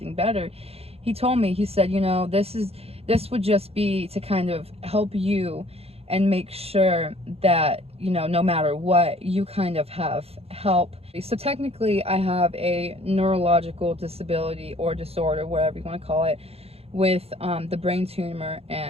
better, he told me, he said, this would just be to kind of help you and make sure that, no matter what, you kind of have help. So technically I have a neurological disability or disorder, whatever you want to call it, with the brain tumor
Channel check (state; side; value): late; left; 0.29 ms